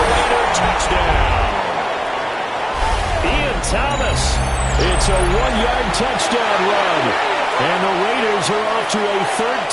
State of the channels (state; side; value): identical; both; correlation 1.00